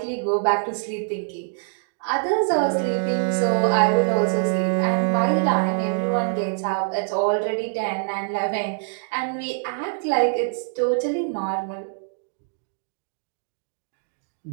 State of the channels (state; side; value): silent; left; 62 dB below the other